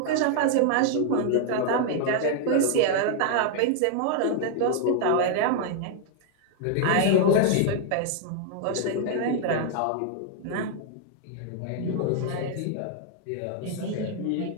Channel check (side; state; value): both; different; correlation 0.00